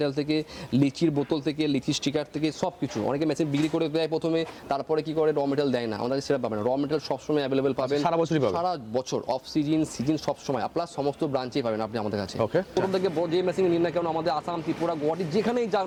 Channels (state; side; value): identical; both; correlation 1.00